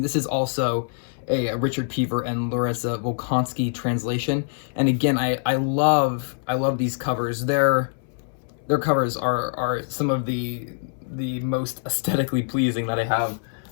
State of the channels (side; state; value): right; silent; 62 dB below the other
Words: is also a Richard Pever and Larissa Volkansky translation. And again, I love these covers. Their covers are some of the most aesthetically pleasing that I have